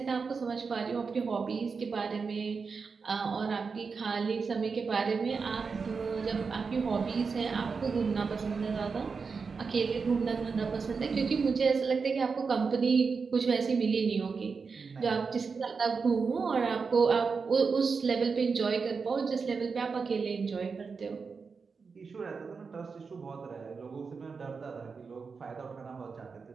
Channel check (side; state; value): left; quieter; 5.1 dB